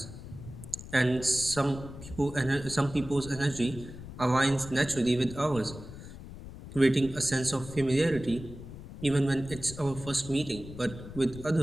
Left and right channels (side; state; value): left; noise; rumble, 13 dB below the sound